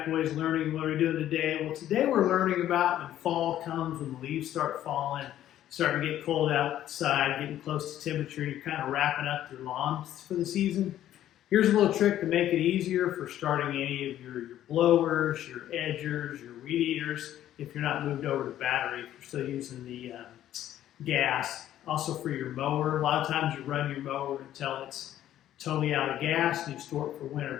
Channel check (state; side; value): quieter; right; 12.2 dB